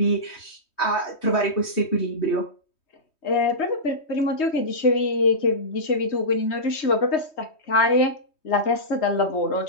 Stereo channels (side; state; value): right; late; 3.2 ms